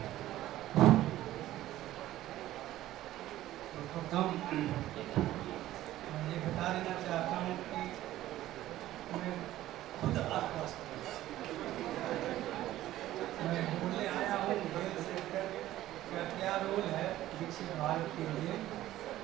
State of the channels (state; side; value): quieter; left; 14.5 dB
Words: मैं ये बता देना चाहता हूँ कि मैं खुद आश्वस्त मैं बोलने आया हूँ हेल्थ सेक्टर का क्या रोल है विकसित भारत के लिए,